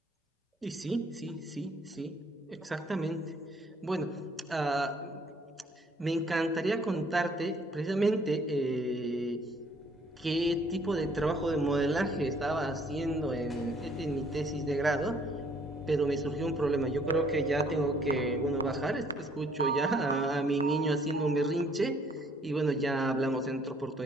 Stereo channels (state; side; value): normal; both; correlation 0.62